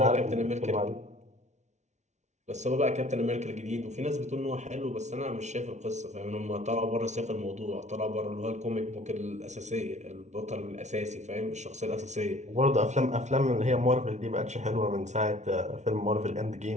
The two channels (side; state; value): left; late; 0.33 ms